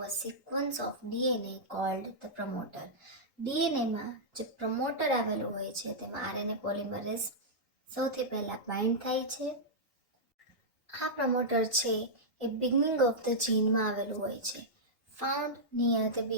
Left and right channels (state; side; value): normal; both; correlation -0.10